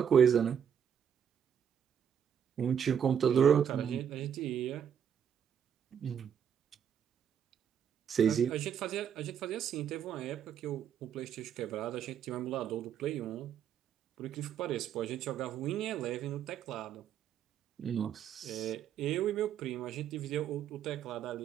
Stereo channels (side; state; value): left; quieter; 8.4 dB